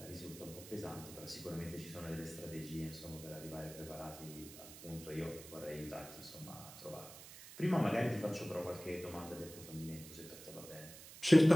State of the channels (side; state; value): right; noise; hiss, 15 dB below the sound